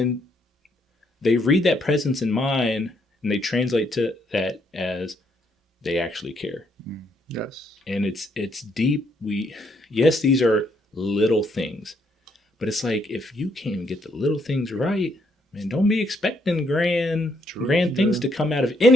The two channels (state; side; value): normal; both; correlation 0.73